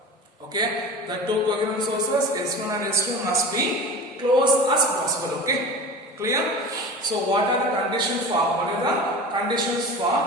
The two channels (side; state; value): both; normal; correlation 0.33